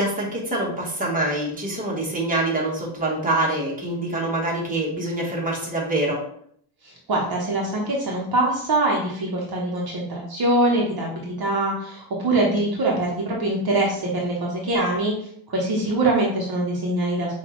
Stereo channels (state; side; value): normal; both; correlation 0.10